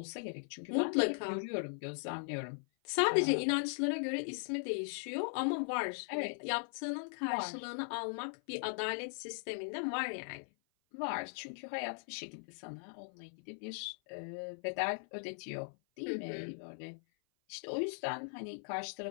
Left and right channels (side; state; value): right; silent; 52 dB below the other